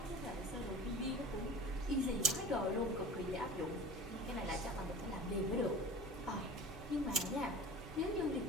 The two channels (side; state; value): both; normal; correlation 0.38